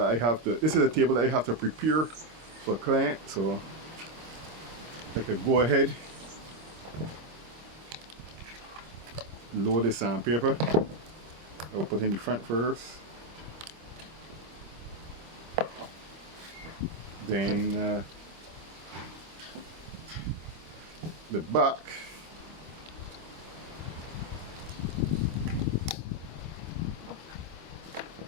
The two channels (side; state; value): left; late; 25 ms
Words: I have to prepare for a client. So I could go ahead, load the sandpaper. I'll put in the front first, then the back.